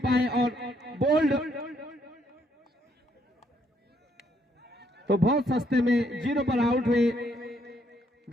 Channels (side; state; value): both; normal; correlation 0.71